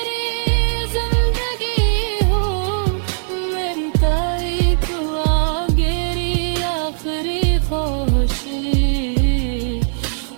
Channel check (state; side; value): silent; left; 64 dB below the other